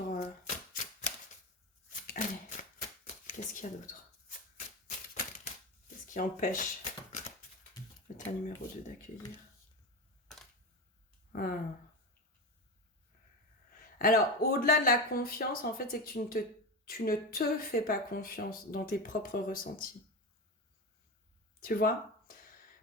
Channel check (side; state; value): both; normal; correlation 0.21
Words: Allez, qu'est-ce qu'il y a d'autre? Qu'est-ce qui empêche le tas numéro 2 d'accueillir? Alors, au-delà de la confiance, en fait, c'est que tu ne te fais pas confiance dans tes propres ressentis. Tu vois?